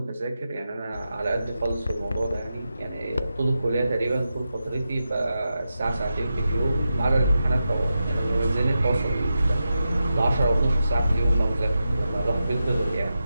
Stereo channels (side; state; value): both; inverted; correlation -0.90